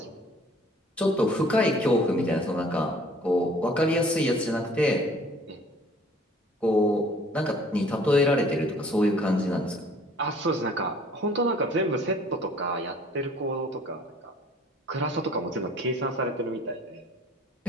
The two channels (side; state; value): both; normal; correlation 0.54